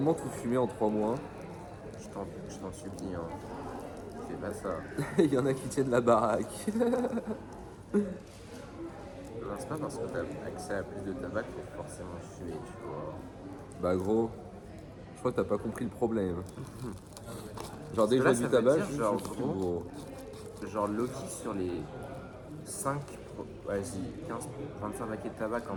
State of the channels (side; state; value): both; identical; correlation 1.00